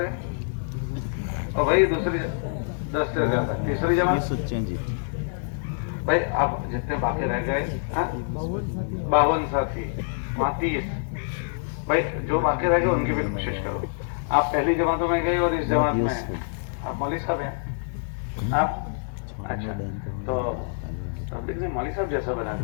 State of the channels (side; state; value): right; silent; 61 dB below the other